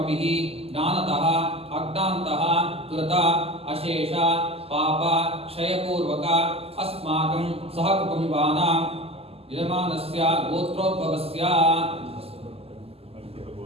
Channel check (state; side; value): late; left; 0.29 ms